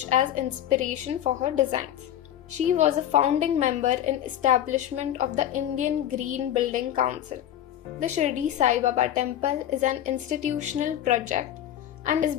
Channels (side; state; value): right; quieter; 11.4 dB